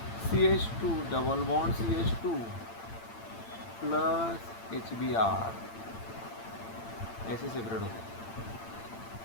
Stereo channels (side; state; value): right; late; 8.8 ms